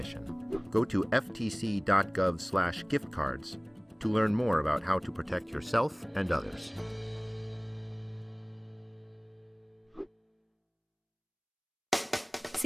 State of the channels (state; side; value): identical; both; correlation 1.00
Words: Go to ftc.gov/giftcards to learn more about how to protect yourself and others.